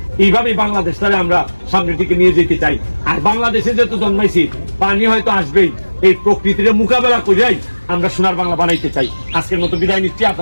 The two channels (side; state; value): both; inverted; correlation -1.00